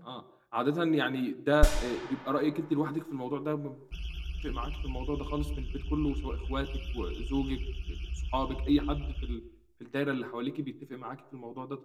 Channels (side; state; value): both; identical; correlation 1.00